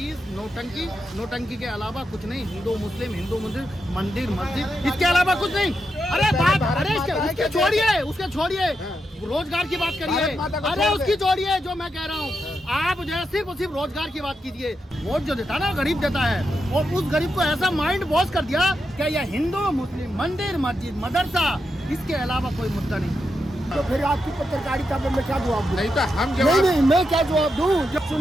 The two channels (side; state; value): both; normal; correlation 0.85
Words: नोटंकी, नोटंकी के अलावा कुछ नहीं। हिंदू मुस्लिम मंदिर मस्जिद, इसके अलावा कुछ नहीं। अरे बात, अरे उसके छोड़िए, उसके छोड़िए, रोजगार की बात करिए। अरे उसकी छोड़िए, जो मैं कह रहा हूँ, आप जो है सिर्फ रोजगार की बात कीजिए। वोट जो देता है ना, गरीब देता है, और उस गरीब को ऐसा माइंड वॉश कर दिया कि यह हिंदू मुस्लिम मंदिर मस्जिद मदरसा, इसके अलावा कोई मुद्दा नहीं। तो फिर आपकी पत्रकारिता पे मैं क्या जवाब दूं? नहीं तो हम नहीं, मैं क्या जवाब दूं? जब